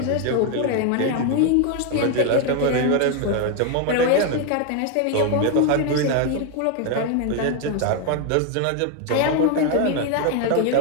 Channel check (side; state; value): both; different; correlation 0.01